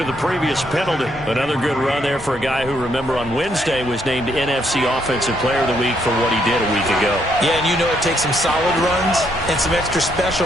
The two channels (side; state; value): both; normal; correlation 0.73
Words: the previous penalty. Another good run there for a guy who, remember, on Wednesday was named NFC Offensive Player of the Week for what he did a week ago. Yeah, and you know it takes some solid runs and some extra